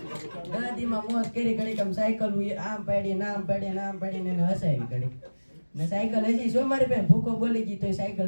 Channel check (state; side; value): inverted; both; correlation -1.00